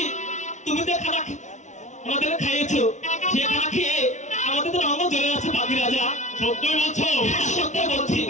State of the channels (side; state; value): right; late; 0.35 ms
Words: তুমি যে খানা আমাদের খাইয়েছো, সে খানা খেয়ে আমাদের তো রঙ জ্বলে যাচ্ছে পাখি রাজা। সত্যই বলছো? হ্যাঁ, সত্যি বলছি।